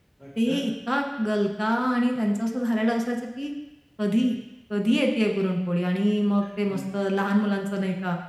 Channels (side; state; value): both; identical; correlation 1.00